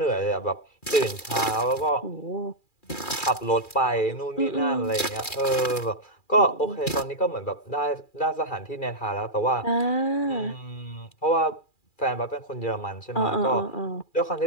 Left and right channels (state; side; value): late; right; 2.4 ms